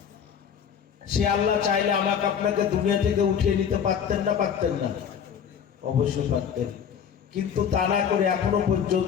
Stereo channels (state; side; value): quieter; right; 7.9 dB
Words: সে আল্লাহ চাইলে আমাকে আপনাকে দুনিয়া থেকে উঠিয়ে নিতে পারতেন না? পারতেন না? অবশ্যই পারতেন। কিন্তু তা না করে এখনো